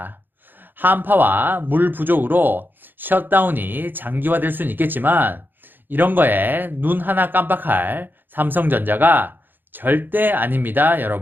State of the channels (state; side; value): late; left; 0.093 ms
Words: 한파와 물 부족으로 셧다운이 장기화될 수는 있겠지만 이런 거에 눈 하나 깜빡할 삼성전자가 절대 아닙니다,